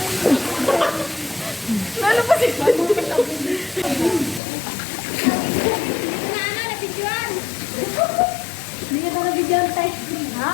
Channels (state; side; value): drops out; right; at 4.4 s